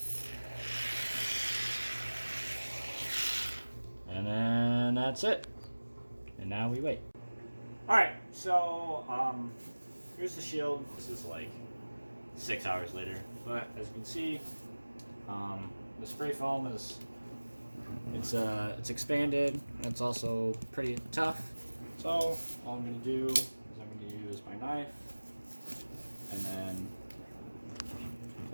And then that's it. And now we wait. Alright, so here's the shield. This is like 6 hours later. But as you can see, the spray foam is it's expanded, and it's also pretty tough. So all I'm gonna do is I'm gonna use my knife and then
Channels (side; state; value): both; inverted; correlation -1.00